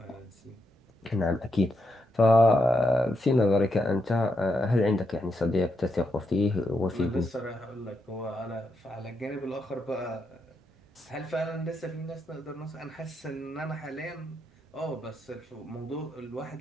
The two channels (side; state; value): both; normal; correlation 0.82